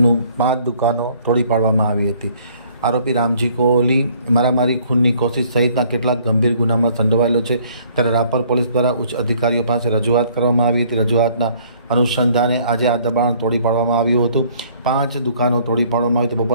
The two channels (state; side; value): inverted; both; correlation -0.60